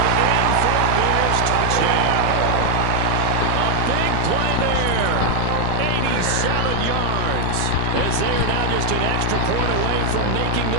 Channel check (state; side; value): different; both; correlation 0.00